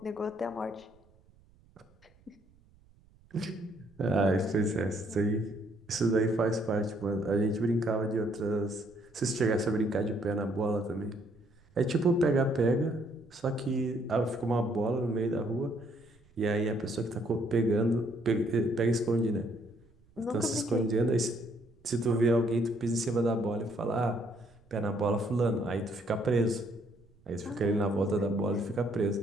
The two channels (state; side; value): noise; right; rumble, 30 dB below the sound